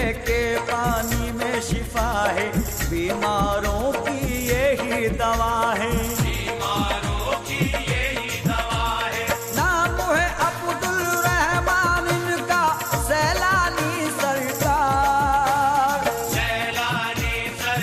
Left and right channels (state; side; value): identical; both; correlation 1.00